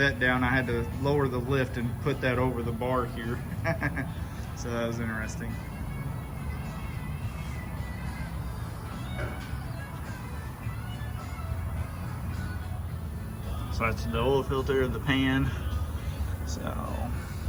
down, I had to lower the lift and put that over the bar here. So that was interesting. So that's the oil filter, the pan. So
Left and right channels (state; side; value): identical; both; correlation 1.00